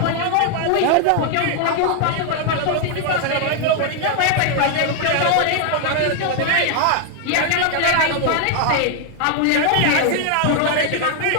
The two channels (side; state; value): both; different; correlation 0.00